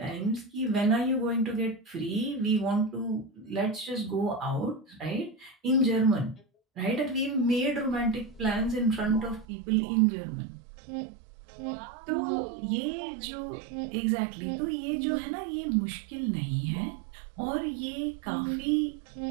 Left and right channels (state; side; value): drops out; left; at 9.5 s